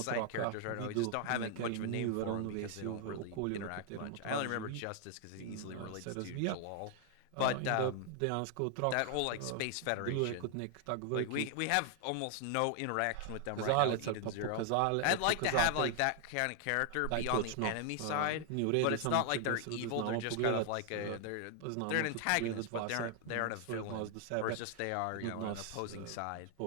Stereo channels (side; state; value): both; different; correlation 0.00